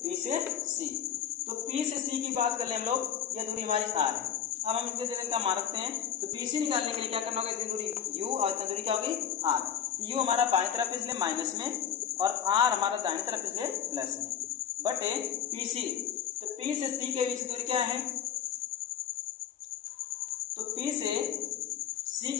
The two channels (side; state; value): right; quieter; 9.3 dB